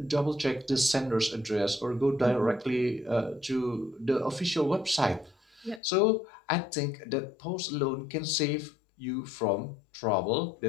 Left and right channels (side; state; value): right; drops out; at 5.8 s